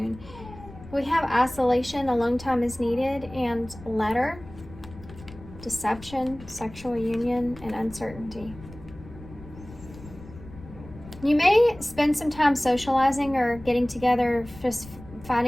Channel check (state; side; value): noise; left; rumble, 17 dB below the sound